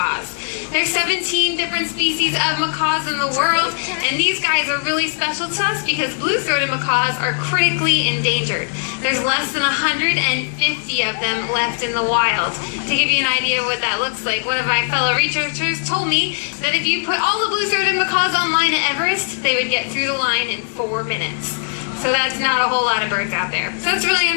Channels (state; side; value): silent; right; digital silence